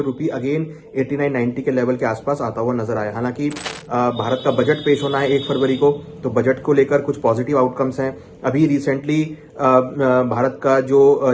रुपी अगेन 89-90 के लेवल के आसपास आता हुआ नजर आया। हालांकि भारत का बजट पेश होना है 1 फरवरी को, तो बजट को लेकर कुछ पॉजिटिव आउटकम्स हैं। अभी रिसेंटली भारत का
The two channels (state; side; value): identical; both; correlation 1.00